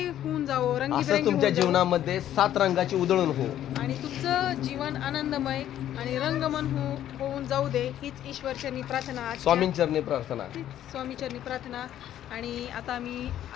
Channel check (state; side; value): quieter; right; 11.6 dB